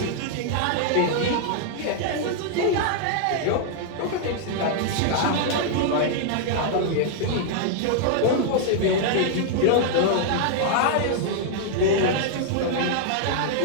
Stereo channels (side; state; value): both; different; correlation -0.01